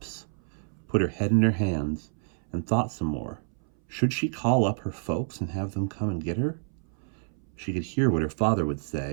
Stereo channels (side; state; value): left; silent; 59 dB below the other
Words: put her head in her hands, and thought some more. Should she call up her folks and have them come and get her? She could hear what her father would